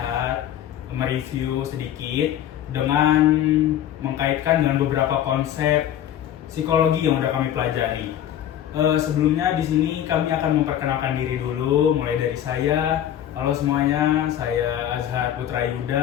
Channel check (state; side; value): quieter; right; 11.0 dB